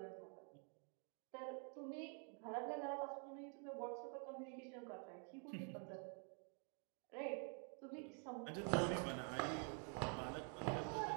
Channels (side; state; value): left; quieter; 39.1 dB